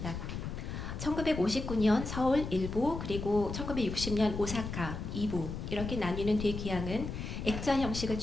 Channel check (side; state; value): left; noise; rumble, 6 dB below the sound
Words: 1959년 서울 1부 그리고 1960년 오사카 2부 이렇게 나뉘는 되기항은 액자 형식을